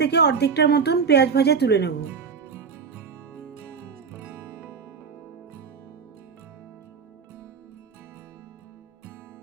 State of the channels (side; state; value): left; quieter; 5.8 dB